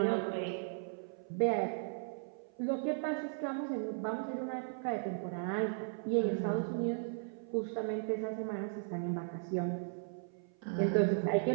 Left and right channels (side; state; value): left; silent; 53 dB below the other